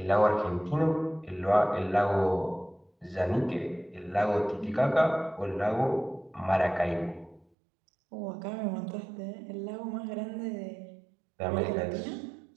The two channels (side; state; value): left; drops out; at 7.5 s